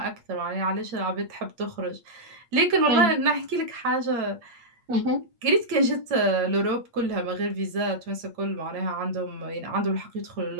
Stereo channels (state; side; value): late; left; 8.5 ms